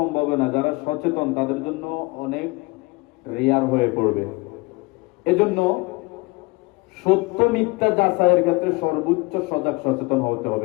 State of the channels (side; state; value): right; quieter; 25.5 dB